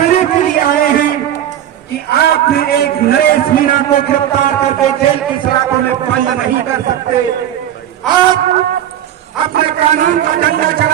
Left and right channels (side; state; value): left; quieter; 11.0 dB